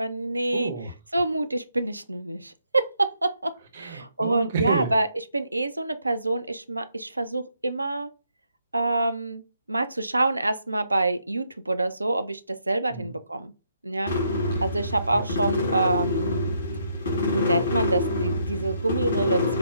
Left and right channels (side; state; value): both; inverted; correlation -0.75